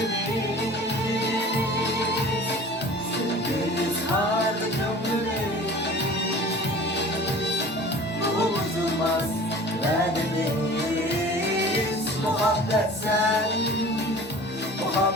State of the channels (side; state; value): both; normal; correlation 0.43